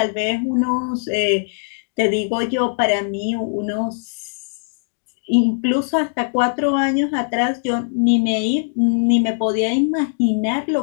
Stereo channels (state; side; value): silent; right; digital silence